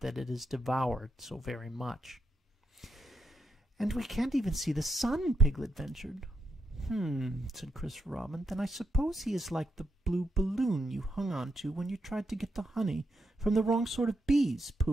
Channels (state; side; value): normal; both; correlation 0.83